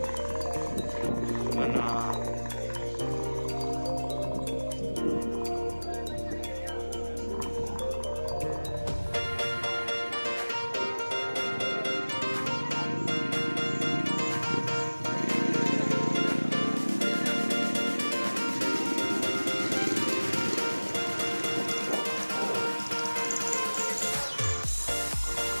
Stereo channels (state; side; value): inverted; both; correlation -1.00